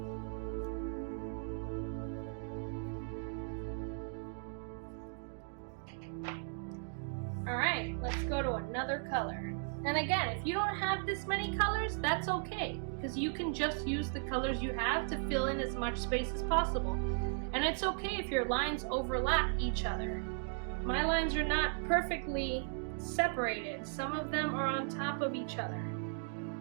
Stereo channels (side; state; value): left; silent; 53 dB below the other